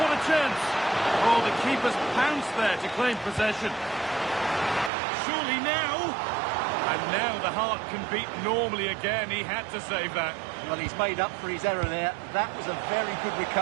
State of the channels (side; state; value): left; drops out; at 4.9 s